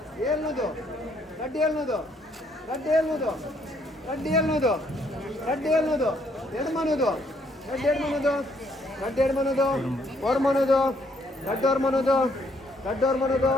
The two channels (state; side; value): normal; both; correlation 0.69